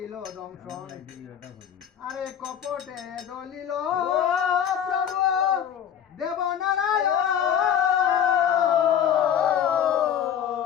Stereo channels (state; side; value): quieter; right; 9.1 dB